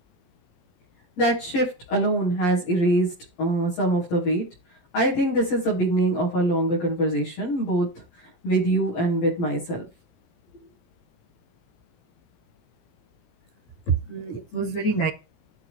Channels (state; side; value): late; right; 17 ms